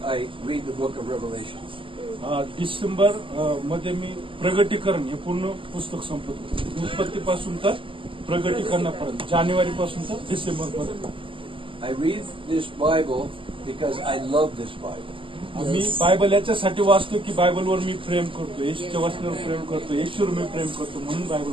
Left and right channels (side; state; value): left; late; 0.25 ms